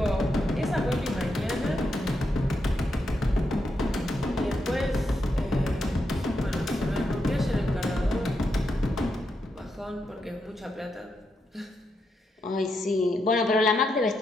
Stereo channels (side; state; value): both; normal; correlation 0.83